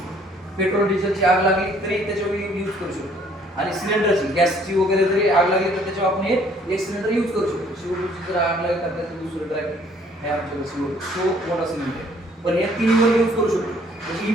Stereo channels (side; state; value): both; normal; correlation 0.60